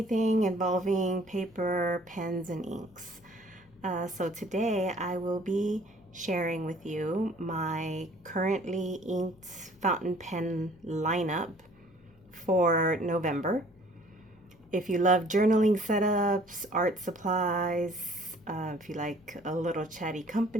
involving paper, pens, and inks. So today I will be sharing with you my currently inked fountain pen lineup for November. If you love journaling setups, art supplies, if you like a little chatty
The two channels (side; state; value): left; noise; hum, 28 dB below the sound